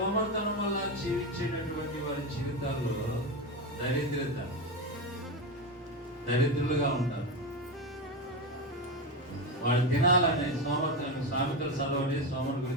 వల్ల జీవించేటటువంటి వారి జీవితాల్లో దరిద్రులుగా ఉంటారు. వాళ్ళు తినాలని సామెతలు చదవండి, సోమరు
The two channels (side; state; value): both; normal; correlation 0.16